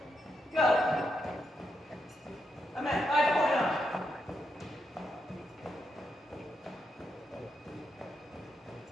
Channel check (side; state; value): both; normal; correlation 0.82